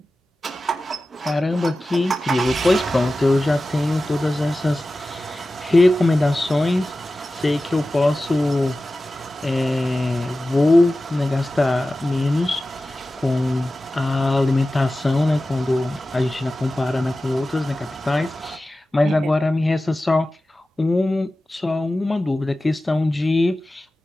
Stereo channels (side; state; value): both; normal; correlation 0.95